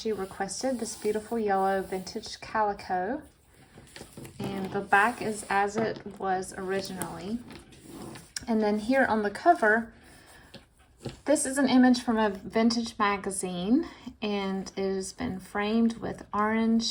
requested this beautiful yellow vintage calico. And the back is as it was originally. And then here on the cover, this is an image from a vintage magazine, and it has been framed with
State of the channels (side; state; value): both; identical; correlation 1.00